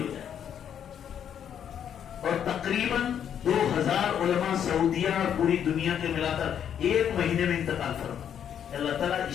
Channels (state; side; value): quieter; right; 8.9 dB